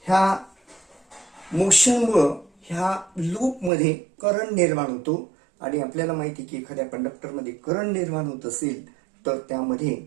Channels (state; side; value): drops out; left; at 3.7 s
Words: ह्या मोशनमुळं ह्या लूपमध्ये करंट निर्माण होतो आणि आपल्याला माहिती की एखाद्या कंडक्टरमध्ये करंट निर्माण होत असेल तर त्यामध्ये